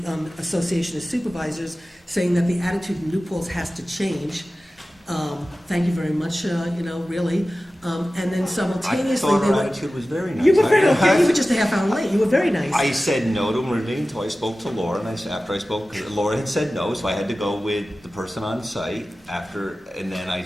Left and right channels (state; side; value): normal; both; correlation 0.95